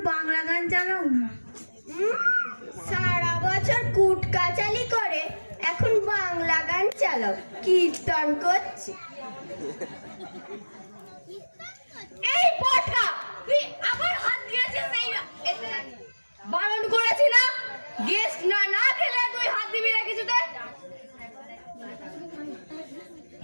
বাংলা গান চালাও না। সারা বছর কুট কাচালি করে এখন বাংলা গান চালাও, কীর্তন করছে। এই পটকা, তুই আবার হাত দিয়েছিস এই বারণ করেছি না? গেস্ট না না খেলে তুই হাত দিবি না কিছুতে।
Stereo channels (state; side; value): inverted; both; correlation -1.00